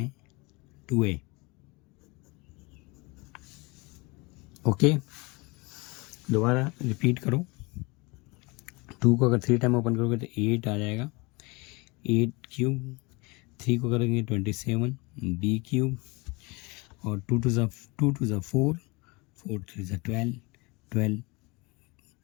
2a। ओके, दोबारा रिपीट करो। 2 को अगर 3 टाइम ओपन करोगे तो 8 आ जाएगा, 8³ 3 को करेंगे 27 b³ और 2 to the 4, 4 3 जा 12, 12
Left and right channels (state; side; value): quieter; right; 26.3 dB